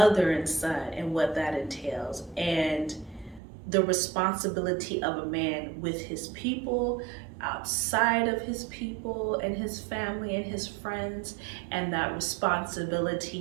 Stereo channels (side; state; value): left; drops out; at 3.4 s